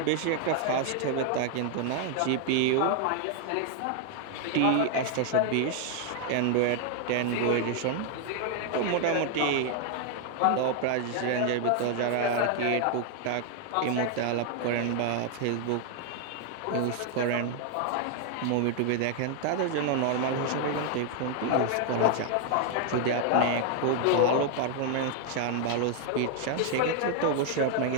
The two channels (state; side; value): different; both; correlation 0.00